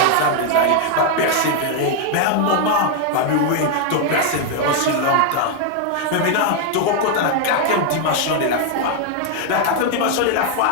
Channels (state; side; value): different; both; correlation 0.00